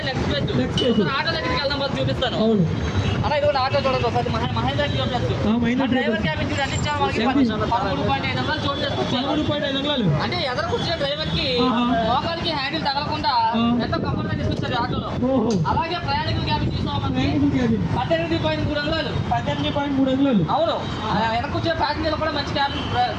ఆటో దగ్గరికి వెళ్దాం చూపిస్తాను. అవును అలా ఇది ఆటో చూడండి ఒకసారి మహేంద్ర డ్రైవర్ క్యాబిన్ అంటే ఎదురు కూర్చున్న డ్రైవర్ కి మోకాలికి హ్యాండిల్ తగలకుండా ఎంతో కంఫర్ట్ గా తీసుకొచ్చారు ఆటోలో. అలాగే ప్రయాణికుల క్యాబిన్ చూసామంటే 18.3 అంగుళాలు. అవును వెనక కూర్చొని ప్యాసింజర్లు కూడా మంచి క్యాబిన్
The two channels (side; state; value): both; identical; correlation 1.00